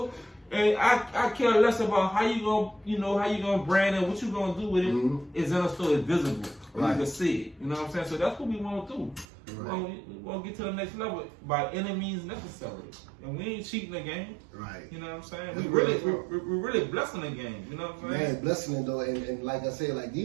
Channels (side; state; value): left; drops out; at 9.2 s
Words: And I care less about how you gonna brand it, what you gonna do with it. Is in a store, it's visible, you can see it. You know what I'm saying? So that's what we want to do. We want to get to the next level by any means necessary, and we ain't cheating the game. Right. You know what I'm saying? We're really blessing the game. You know what I'm saying? Man, blessing it though, and like I said, like